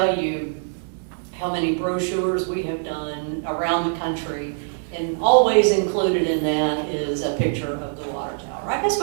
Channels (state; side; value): silent; left; digital silence